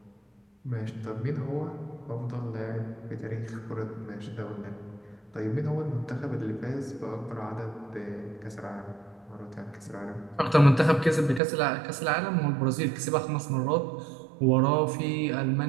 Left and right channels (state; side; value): drops out; left; at 11.4 s